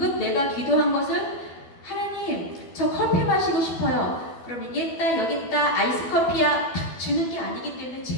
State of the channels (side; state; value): right; late; 12 ms